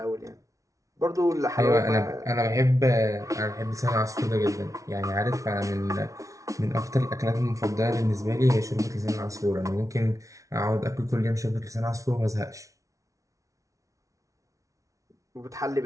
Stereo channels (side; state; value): left; late; 0.16 ms